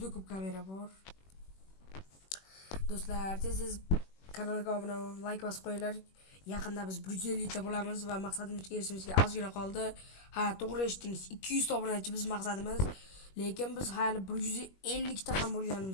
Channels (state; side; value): late; right; 21 ms